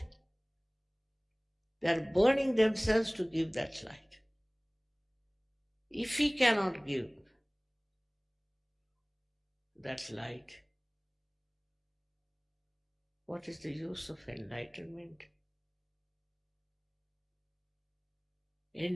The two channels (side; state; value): both; identical; correlation 1.00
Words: They are burning themselves to give that light. If we cannot give that light, what is the use of enlightenment?